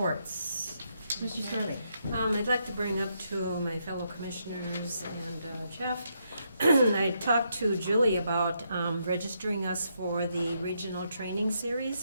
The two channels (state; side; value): inverted; both; correlation -0.78